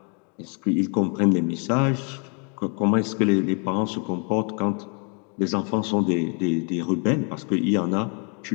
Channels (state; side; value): quieter; right; 38.7 dB